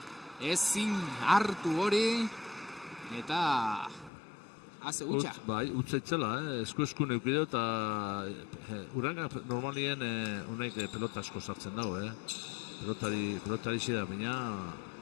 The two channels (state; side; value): drops out; right; at 4.1 s